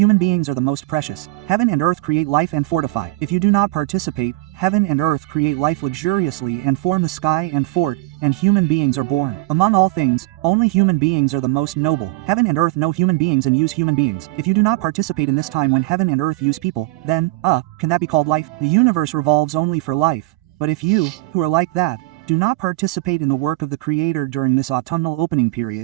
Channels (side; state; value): left; quieter; 19.5 dB